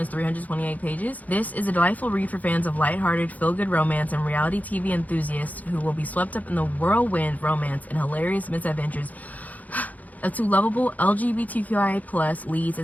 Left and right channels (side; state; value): right; late; 0.078 ms